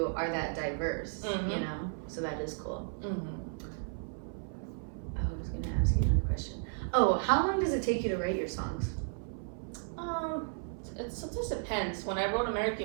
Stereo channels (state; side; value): silent; left; 55 dB below the other